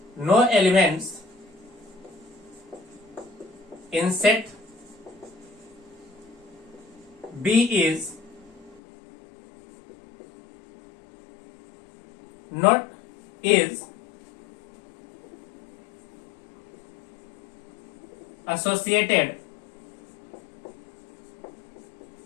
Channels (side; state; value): right; drops out; at 8.8 s